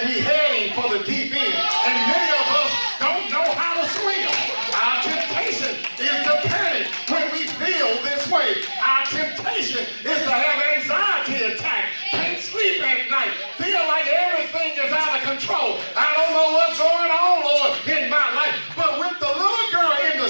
we're heading for the deep end. And many of us don't know how to swim. Our temptation is to panic when we feel this way. Our temptation is to have anxiety attack, can't sleep at night, feel like everything is out of control. I don't know what's going on, Lord, in my life. But with the little girl in the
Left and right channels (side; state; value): both; inverted; correlation -1.00